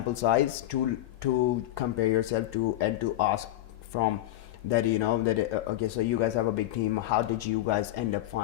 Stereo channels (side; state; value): right; quieter; 14.7 dB